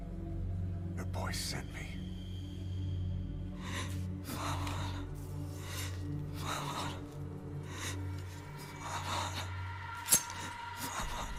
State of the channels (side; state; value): both; identical; correlation 1.00